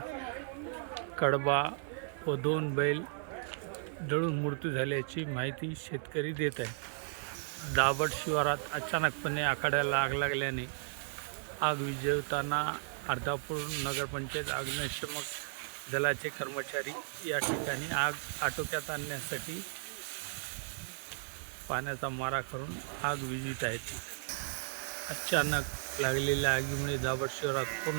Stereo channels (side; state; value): left; silent; digital silence